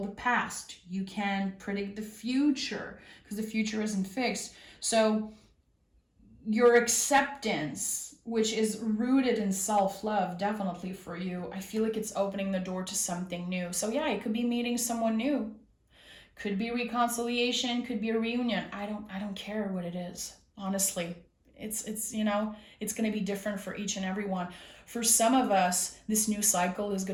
the past. You can predict the future because the future isn't fixed. So your acceptance, which is rooted in self-love, definitely for you, I feel like it's opening the door to something new. So yeah, it could be meeting someone new. Could be reconciliation, could be a reunion. I don't care what it is, honestly. It's going to be different for each and every one. For some of us, this new cycle is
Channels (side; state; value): both; identical; correlation 1.00